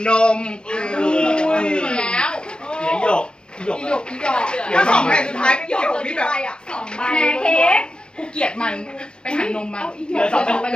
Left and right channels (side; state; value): right; late; 0.050 ms